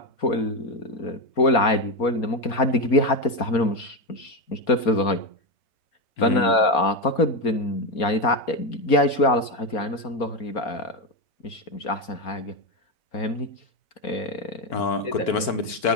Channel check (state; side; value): late; right; 4.2 ms